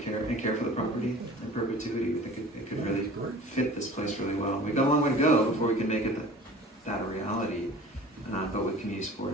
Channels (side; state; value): both; normal; correlation 0.43